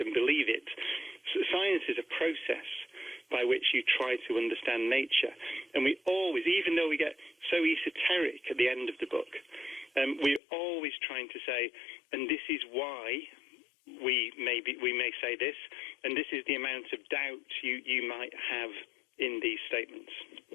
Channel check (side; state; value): right; drops out; at 10.4 s